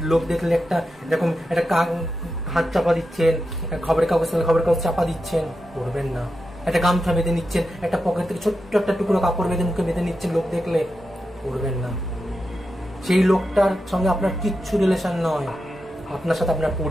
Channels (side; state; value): both; normal; correlation 0.89